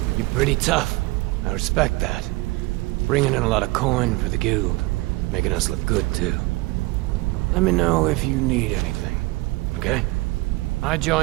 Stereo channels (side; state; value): left; quieter; 22.1 dB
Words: You're pretty tough. I respect that. Bringing in a lot of coin for the guild. Making us look good, too. Let me know if you need anything, okay? I